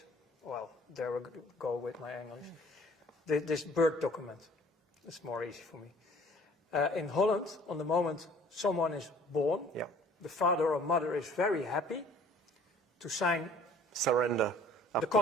Well, there we go with my English. This birth document. It's more easy for me. In Holland, on the moment someone is born, Yeah. the father or mother is very happy to sign Surrender. the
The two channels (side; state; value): both; normal; correlation 0.53